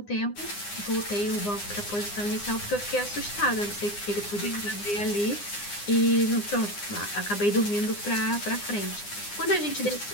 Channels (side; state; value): right; late; 9.8 ms